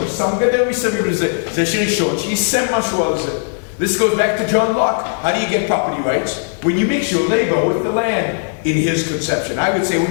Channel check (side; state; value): right; silent; 68 dB below the other